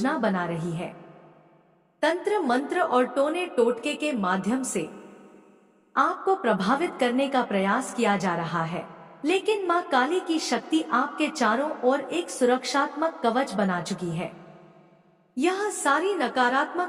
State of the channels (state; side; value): identical; both; correlation 1.00